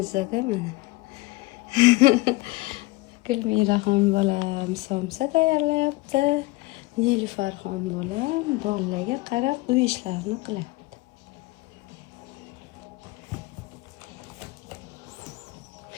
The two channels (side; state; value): right; quieter; 21.5 dB